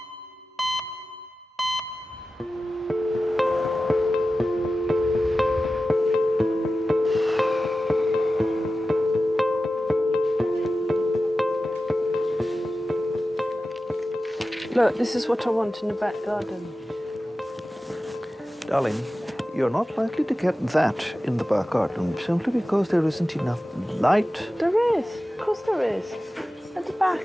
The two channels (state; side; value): normal; both; correlation 0.94